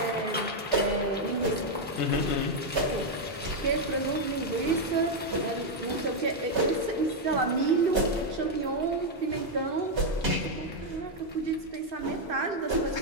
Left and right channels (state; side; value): normal; both; correlation 0.00